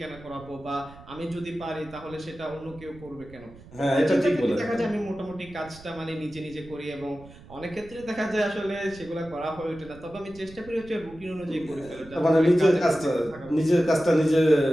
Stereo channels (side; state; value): right; noise; rumble, 20 dB below the sound